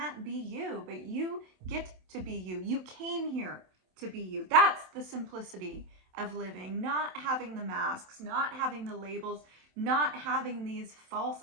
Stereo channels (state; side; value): late; left; 27 ms